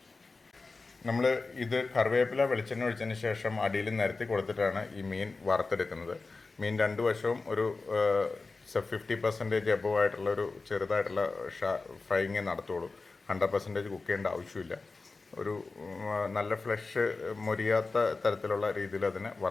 നമ്മൾ ഇത് കറിവേപ്പില വെളിച്ചെണ്ണ ഒഴിച്ചതിന് ശേഷം അടിയിൽ നിരത്തി കൊടുത്തിട്ടാണ് ഈ മീൻ വറുത്തെടുക്കുന്നത്. മീൻ രണ്ട് വശവും ഒരു 50% എബവ് ആയിട്ടുള്ള ഒരു ചെറുതായിട്ടുള്ള ഫ്രൈയിങ് നടത്തുള്ളൂ. 100% കുക്ക് ചെയ്യേണ്ട ആവശ്യമില്ല. ഒരു നല്ല ഫ്ലഷ് മൊരിയാത്ത തരത്തിലുള്ള രീതിയിൽ അതിനെ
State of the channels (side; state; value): right; quieter; 3.8 dB